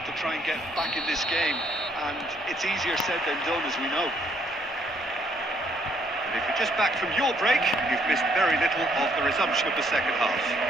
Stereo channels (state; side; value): normal; both; correlation 0.68